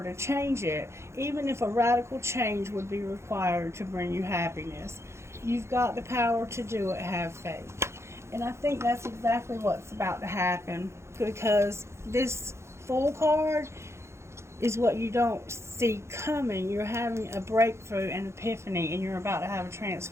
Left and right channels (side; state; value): left; late; 0.13 ms